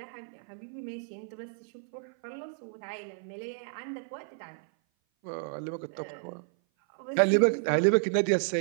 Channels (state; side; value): silent; left; 56 dB below the other